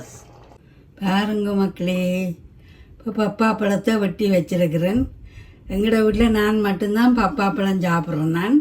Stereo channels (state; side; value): identical; both; correlation 1.00